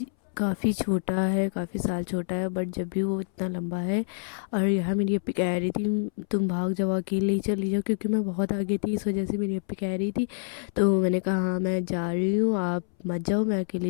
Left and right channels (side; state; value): right; silent; 60 dB below the other